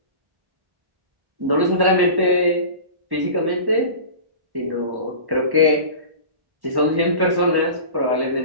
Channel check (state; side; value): late; left; 1.1 ms